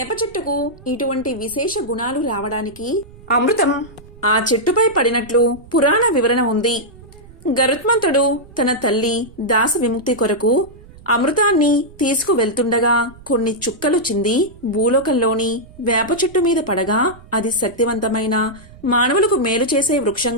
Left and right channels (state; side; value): noise; right; rumble, 21 dB below the sound